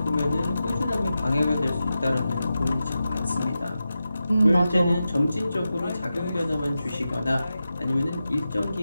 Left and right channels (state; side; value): inverted; both; correlation -0.91